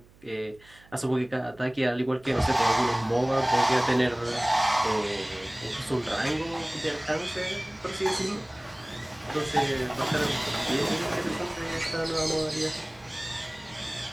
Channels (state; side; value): noise; right; hum, 27 dB below the sound